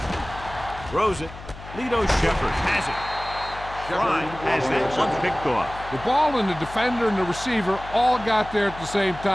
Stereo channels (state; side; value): noise; left; hum, 15 dB below the sound